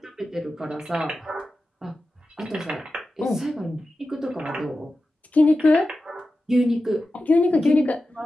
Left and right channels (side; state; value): both; normal; correlation 0.93